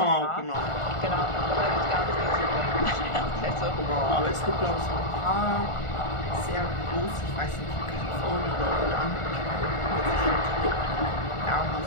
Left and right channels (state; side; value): late; right; 1.4 ms